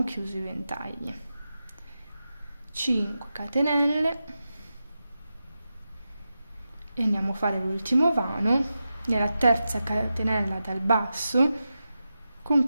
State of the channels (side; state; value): both; inverted; correlation -0.90